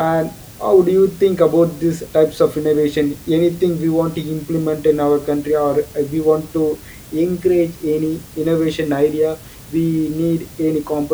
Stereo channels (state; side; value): identical; both; correlation 1.00